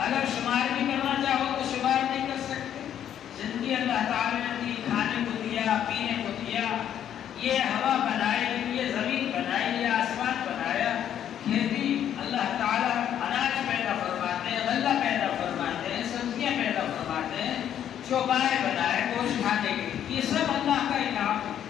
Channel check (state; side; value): quieter; right; 10.0 dB